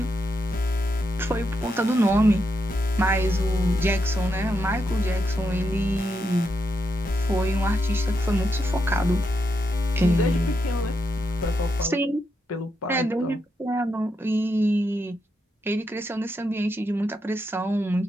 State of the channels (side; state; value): both; normal; correlation 0.83